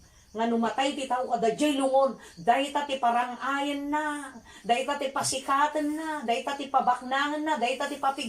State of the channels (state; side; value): identical; both; correlation 1.00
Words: Nga numatay ti tao kada jay lungon. Day ta ti parangayan na. Day ta ti pasikatan na. Day ta ti pabaknangan na. Day ta ti